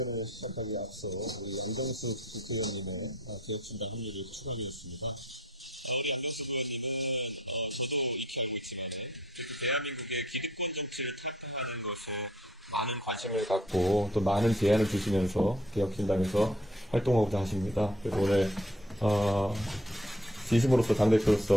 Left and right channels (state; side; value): normal; both; correlation 0.60